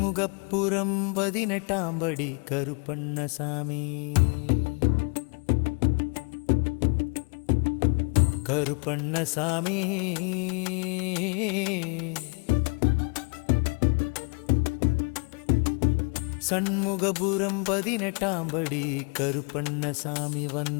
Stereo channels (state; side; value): quieter; right; 34.7 dB